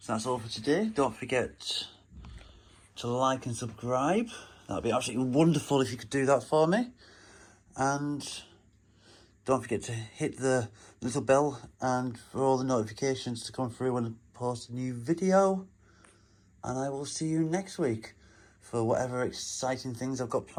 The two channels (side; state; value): both; identical; correlation 1.00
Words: that's all for today. Don't forget to like and subscribe. That'd be absolutely wonderful if you could do that for me. And don't forget to hit the little bell and for all the notifications to come through when I post a new video. And I will see you next week for whatever exciting things I've got